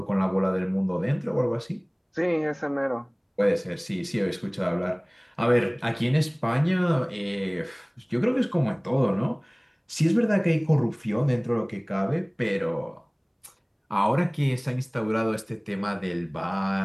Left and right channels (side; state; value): both; identical; correlation 1.00